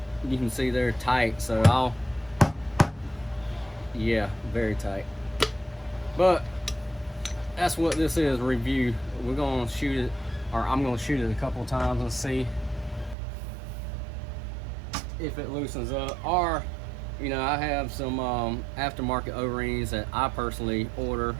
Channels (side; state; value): left; drops out; at 13.2 s